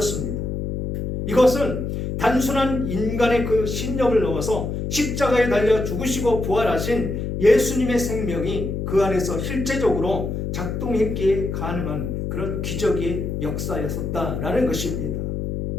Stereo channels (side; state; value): left; noise; hum, 3 dB below the sound